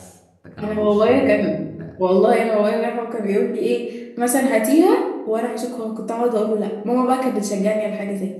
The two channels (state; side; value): identical; both; correlation 1.00